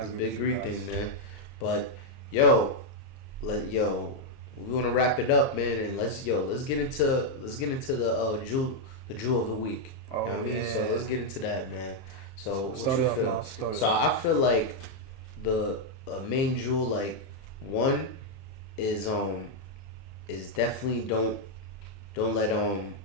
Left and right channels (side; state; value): right; late; 30 ms